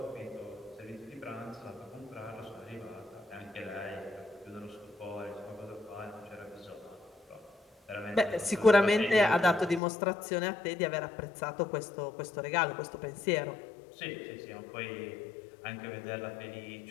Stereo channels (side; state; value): right; drops out; at 9.8 s